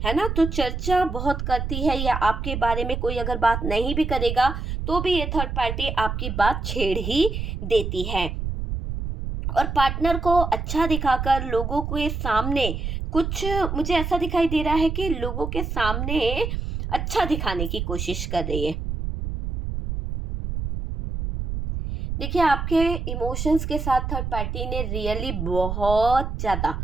है ना। तो चर्चा बहुत करती है, या आपके बारे में कोई अगर बात नहीं भी करेगा तो भी ये थर्ड पार्टी आपकी बात छेड़ ही देती है, और पार्टनर को अच्छा दिखाकर लोगों के सामने कुछ, मुझे ऐसा दिखाई दे रहा है कि लोगों के सामने अच्छा दिखाने की कोशिश कर रही है। देखिए, आपके इमोशंस के साथ थर्ड पार्टी ने रियली बहुत ज़्यादा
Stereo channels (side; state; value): right; noise; rumble, 3 dB below the sound